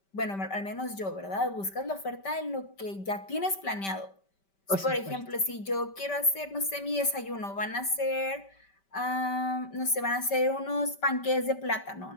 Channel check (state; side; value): late; right; 5.2 ms